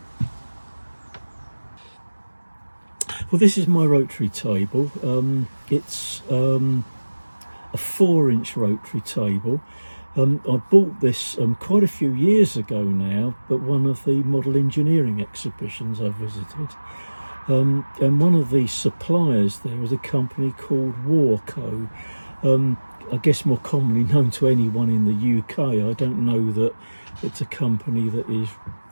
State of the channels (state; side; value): inverted; both; correlation -1.00